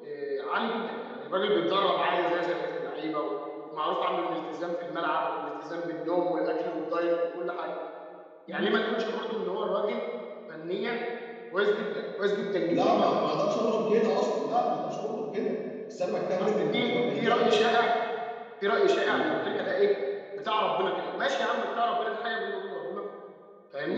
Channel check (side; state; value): both; identical; correlation 1.00